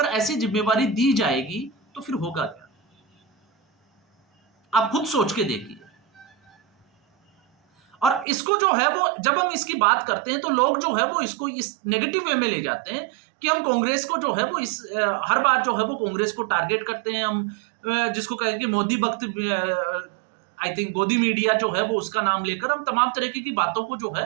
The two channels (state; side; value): drops out; left; at 8.2 s